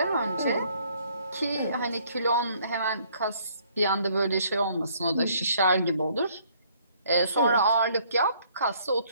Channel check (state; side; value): inverted; both; correlation -0.63